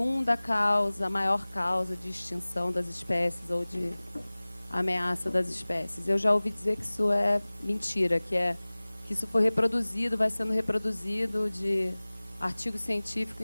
causa, a maior causa de extinção das espécies ou de ameaça das espécies. Eu já ouvi dizer que isso é mentira, que isso foi reproduzido, vai sendo reproduzido de artigo científico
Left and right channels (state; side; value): inverted; both; correlation -1.00